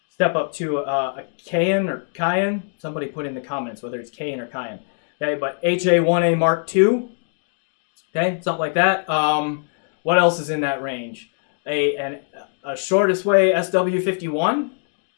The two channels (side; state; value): right; silent; 64 dB below the other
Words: Step up to a Cayenne or Cayenne. Somebody put in the comments whether it's Cayenne or Cayenne. Okay, but HA1A Mark II. Okay, something like that. What else is in that range? A shortest way SW51.